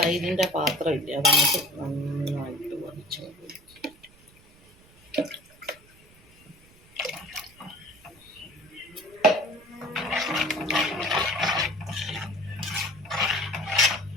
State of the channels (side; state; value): right; noise; rumble, 27 dB below the sound